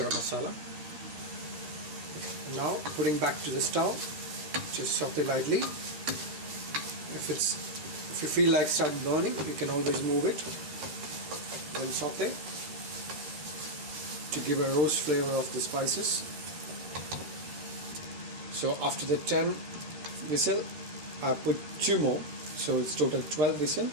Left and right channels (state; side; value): late; left; 13 ms